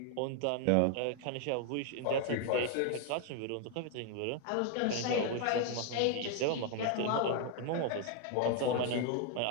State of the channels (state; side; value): different; both; correlation 0.01